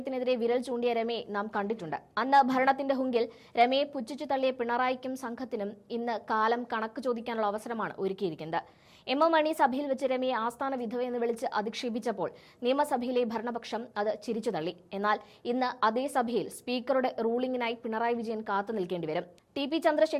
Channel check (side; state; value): both; identical; correlation 1.00